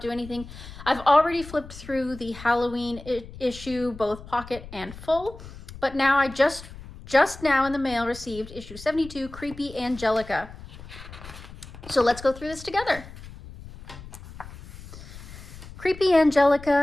anything. I've already flipped through the Halloween issue, both pocket and full, but now I just now in the mail received issue 72, Creepy Angelica. So let's go through this together. Creepy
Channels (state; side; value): noise; left; rumble, 15 dB below the sound